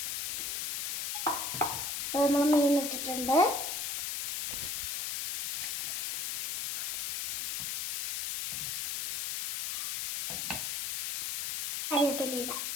അപ്പൊ നമ്മൾ മീൻ ഇട്ടിട്ടുണ്ട്. കറിവേപ്പില ഇടാം.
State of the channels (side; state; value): left; noise; hiss, 2 dB below the sound